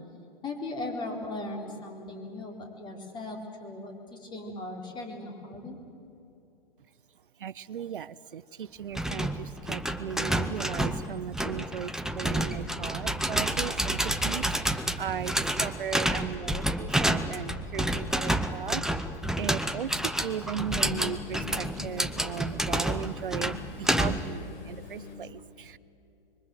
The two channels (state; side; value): normal; both; correlation 0.58